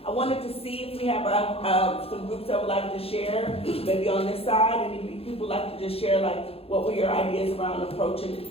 I wanted to see if we have, some groups that would like to share, maybe on this side, any people like to just share, like, what were your ideas around approaching,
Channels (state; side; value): late; right; 0.28 ms